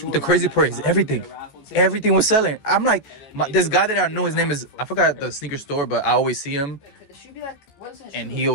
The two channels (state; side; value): late; right; 14 ms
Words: crazy part is everything was selling. I'm like, this guy that I know, his name is, I forgot the sneaker store, but I always see him, and he